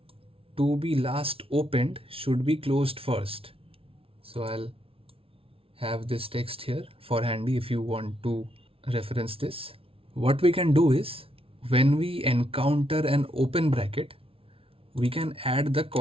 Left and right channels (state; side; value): late; left; 0.26 ms